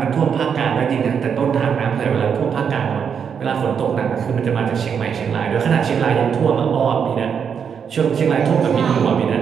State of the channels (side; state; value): left; quieter; 7.1 dB